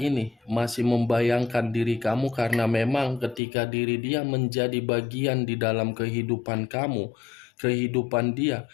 masih membayangkan diri kamu, karena memang ketika diri dia menjadi bagian di dalam kehidupan kamu, kehidupan dia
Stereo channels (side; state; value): right; drops out; at 3.4 s